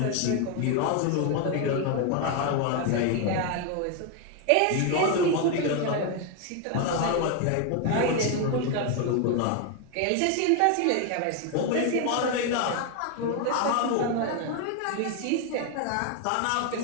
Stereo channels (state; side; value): different; both; correlation 0.01